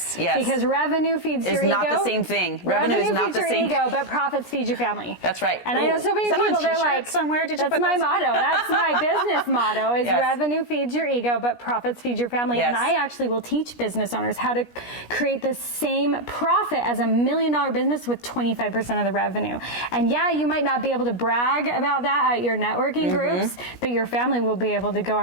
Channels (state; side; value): late; right; 17 ms